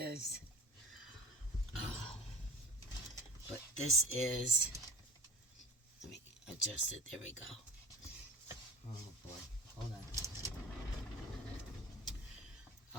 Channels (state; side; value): normal; both; correlation 0.36